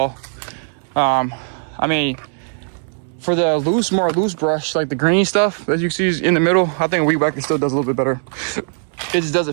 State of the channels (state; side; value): silent; left; digital silence